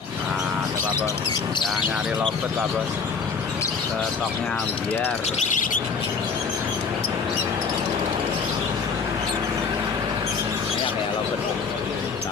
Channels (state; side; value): quieter; right; 5.4 dB